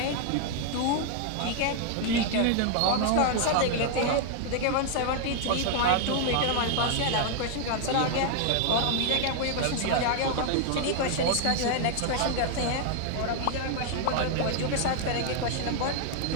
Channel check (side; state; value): both; different; correlation 0.00